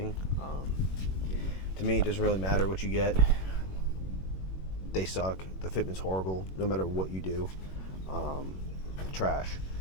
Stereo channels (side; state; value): right; late; 21 ms